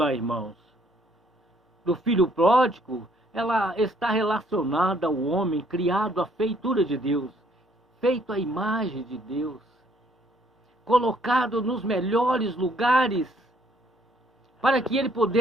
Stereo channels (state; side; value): normal; both; correlation 0.65